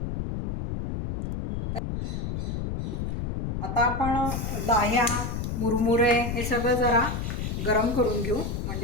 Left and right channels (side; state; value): left; noise; rumble, 3 dB below the sound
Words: आता आपण लाह्या, मुरमुरे हे सगळं जरा गरम करून घेऊ,